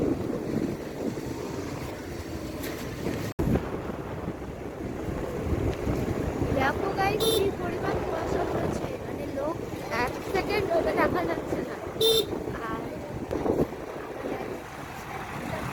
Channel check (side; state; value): both; identical; correlation 1.00